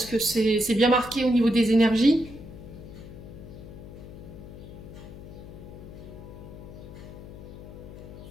que c'est bien marqué au niveau des énergies.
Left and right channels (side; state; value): left; noise; hum, 14 dB below the sound